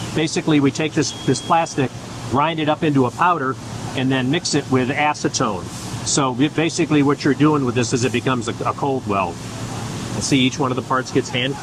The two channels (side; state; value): both; identical; correlation 1.00